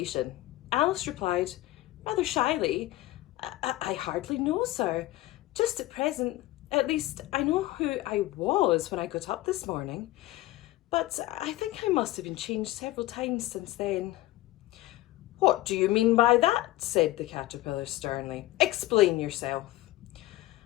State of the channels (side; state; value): right; quieter; 17.1 dB